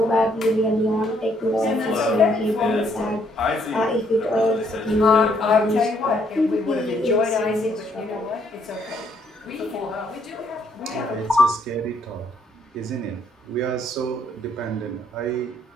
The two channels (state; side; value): normal; both; correlation 0.68